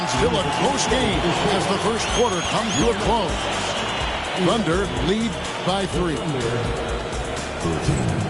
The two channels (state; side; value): identical; both; correlation 1.00